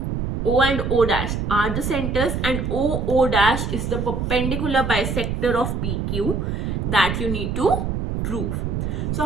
and O dash are the centers, and O dash is the perpendicular bisector of PQ that you need to prove.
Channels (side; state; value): right; noise; rumble, 2 dB below the sound